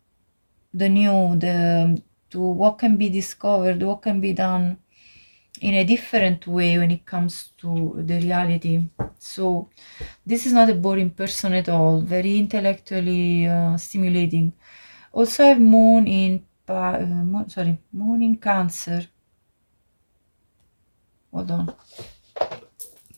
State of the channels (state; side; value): inverted; both; correlation -1.00